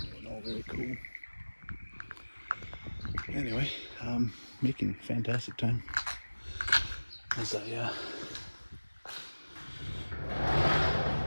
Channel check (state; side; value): inverted; both; correlation -1.00